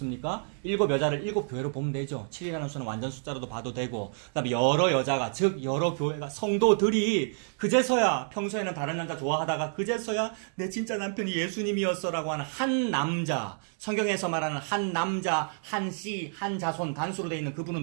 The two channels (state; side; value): silent; left; 59 dB below the other